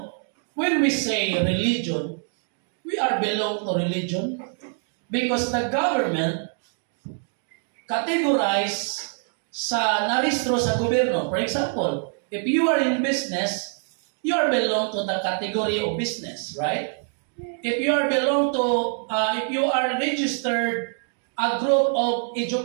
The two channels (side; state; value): left; silent; 58 dB below the other